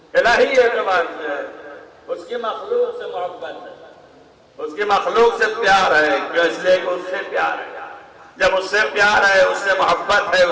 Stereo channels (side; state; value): both; identical; correlation 1.00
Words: الہی اعتبار سے ہے، اس کی مخلوق سے محبت ہے، اس کی مخلوق سے پیار ہے، کیوں؟ اس لیے کہ اس سے پیار ہے، جب اس سے پیار ہے، اس سے محبت ہے،